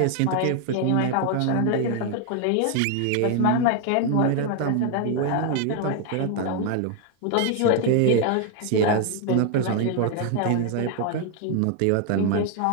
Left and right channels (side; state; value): both; different; correlation 0.00